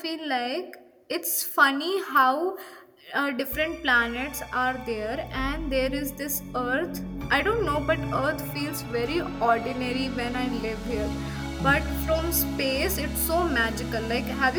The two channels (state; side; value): identical; both; correlation 1.00